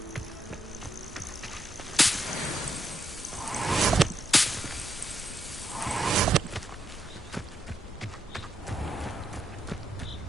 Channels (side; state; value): both; normal; correlation 0.80